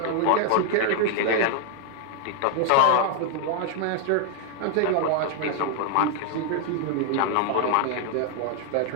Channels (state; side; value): different; both; correlation 0.00